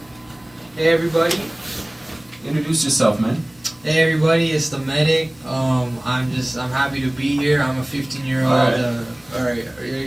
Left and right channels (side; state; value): left; noise; hum, 29 dB below the sound